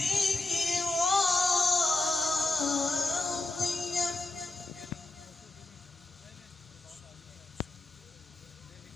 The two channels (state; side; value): quieter; right; 3.1 dB